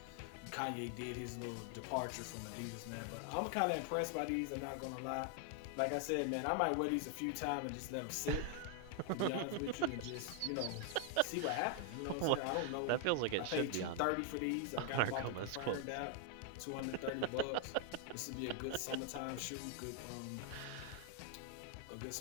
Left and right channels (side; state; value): both; different; correlation 0.00